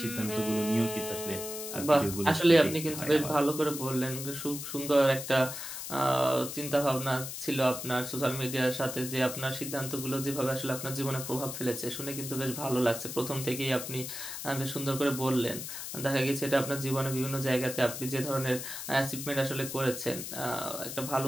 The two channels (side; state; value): left; noise; hiss, 7 dB below the sound